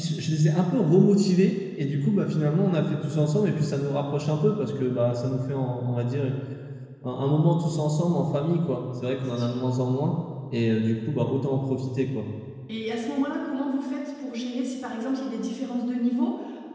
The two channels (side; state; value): both; identical; correlation 1.00